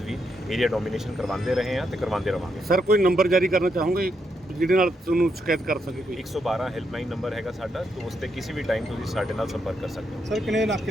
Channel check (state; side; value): normal; both; correlation 0.79